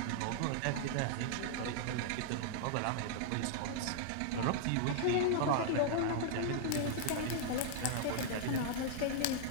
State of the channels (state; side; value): different; both; correlation -0.01